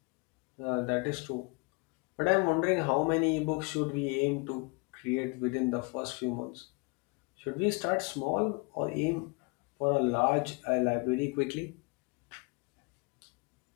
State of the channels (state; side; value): quieter; right; 31.0 dB